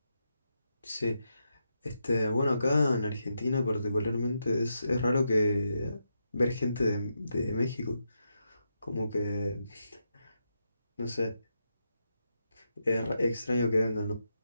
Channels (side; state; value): both; inverted; correlation -0.84